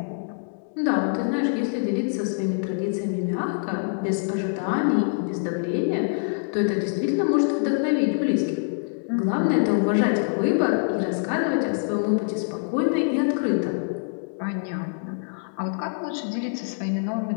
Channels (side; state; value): right; silent; digital silence